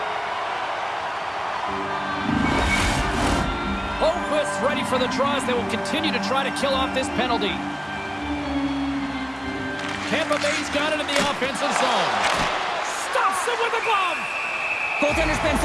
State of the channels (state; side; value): identical; both; correlation 1.00